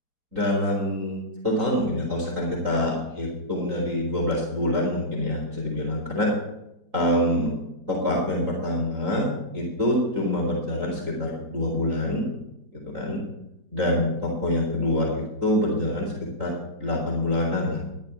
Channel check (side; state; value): left; late; 3.8 ms